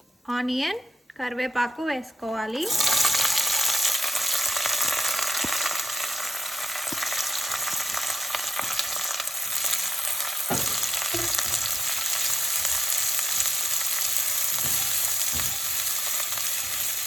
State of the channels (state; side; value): normal; both; correlation 0.87